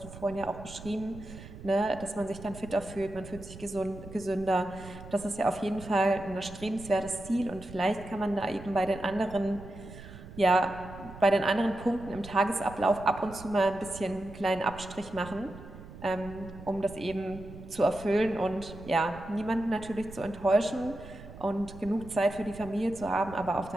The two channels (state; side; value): noise; right; rumble, 15 dB below the sound